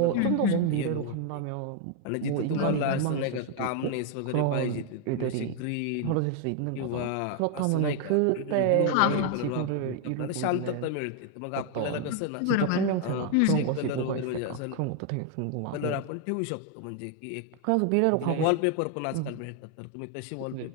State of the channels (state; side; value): different; both; correlation 0.00